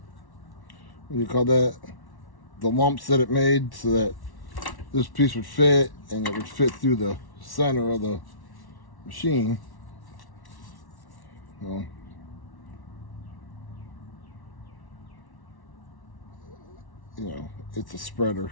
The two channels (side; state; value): right; late; 1.1 ms